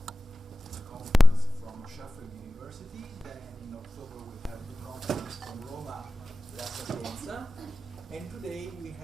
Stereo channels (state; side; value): normal; both; correlation 0.97